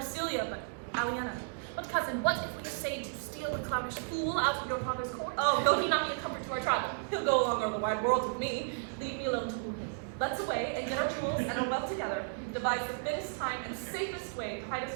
but Aliena. But cousin, what if we essayed to steal the clownish fool out of your father's court? Oh, though he not be a comfort to our travel. He'll go along over the wide world with me. Leave me alone to woo him. Let's away and get our jewels and our wealth together. Devise the fittest time and safest way to hide us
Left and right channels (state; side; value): silent; left; digital silence